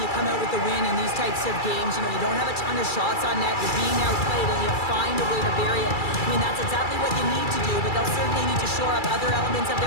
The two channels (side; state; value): right; late; 2.3 ms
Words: come out with the win in these types of games. You know, you don't have a ton of shots on net. You're being outplayed, and you find a way to bury it. I mean, that's exactly what you need to do, but they'll certainly need to shore up other elements of